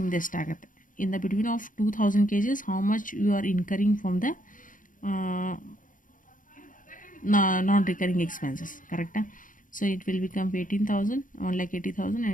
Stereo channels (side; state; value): right; late; 0.39 ms